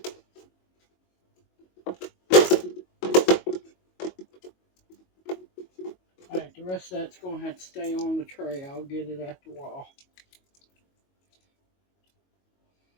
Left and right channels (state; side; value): late; right; 22 ms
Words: Alright, the rest of that's going to have to stay on the tray. I'll get it after a while.